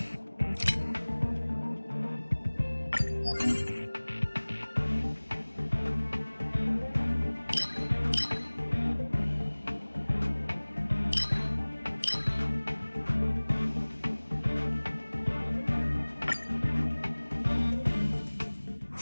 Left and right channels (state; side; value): inverted; both; correlation -1.00